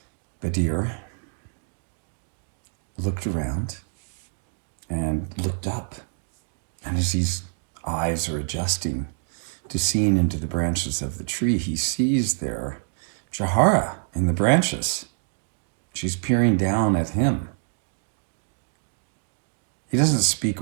Badir looked around and looked up. And as his eyes are adjusting to seeing into the branches of the tree, he sees there Jahara in the branches. She's peering down at him. He doesn't speak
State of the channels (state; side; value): silent; left; 61 dB below the other